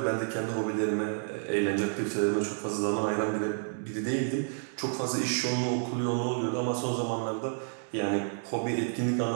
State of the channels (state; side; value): silent; left; digital silence